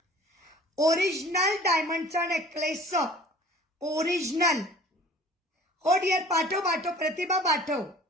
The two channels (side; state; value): both; normal; correlation 0.47